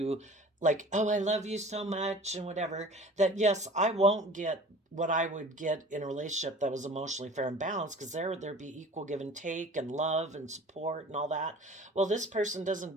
like, oh, I love you so much and whatever, that yes, I won't get what I would get in a relationship that was emotionally fair and balanced, because there'd be equal give and take and love and support and all that. Well, this person doesn't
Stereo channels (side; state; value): both; normal; correlation 0.44